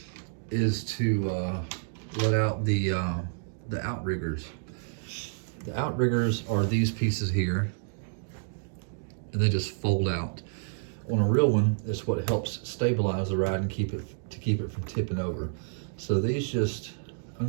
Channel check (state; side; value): silent; left; digital silence